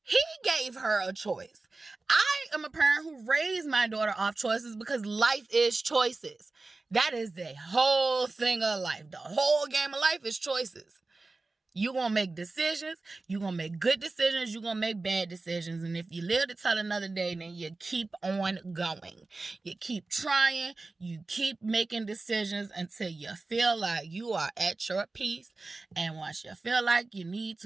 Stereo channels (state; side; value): quieter; left; 3.5 dB